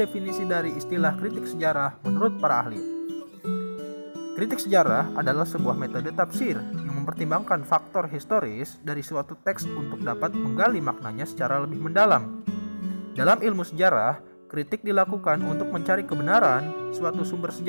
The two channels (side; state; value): both; inverted; correlation -1.00